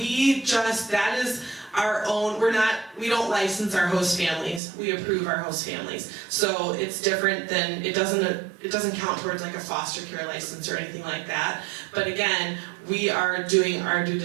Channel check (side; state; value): left; drops out; at 4.6 s